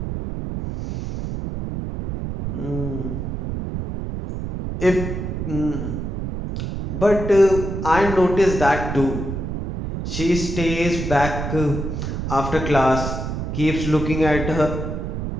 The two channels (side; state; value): right; noise; rumble, 4 dB below the sound